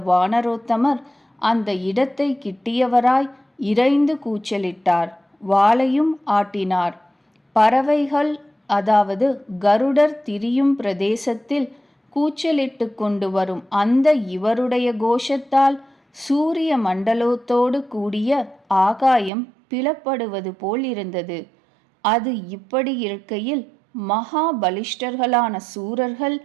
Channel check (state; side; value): drops out; left; at 19.3 s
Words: வானரோத்தமர் அந்த இடத்தை கிட்டியவராய் இரைந்து கூச்சலிட்டார். வாளையும் ஆட்டினார். பறவைகள் அதாவது கருடர் திரியும் பிரதேசத்தில் கூச்சலிட்டு கொண்டு வரும் அந்த இவருடைய கோஷத்தால் சூரிய மண்டலத்தோடு கூடிய ஆகாயம் பிளப்படுவது போல் இருந்தது. அது இப்படி இருக்கையில் மகா பலிஷ்டர்களான சூரர்கள்